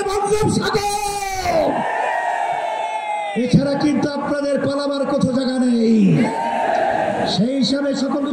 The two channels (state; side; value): identical; both; correlation 1.00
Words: বঙ্গোপসাগর। এছাড়া কিন্তু আপনাদের পালাবার কোথাও জায়গা নেই। সেই হিসাবে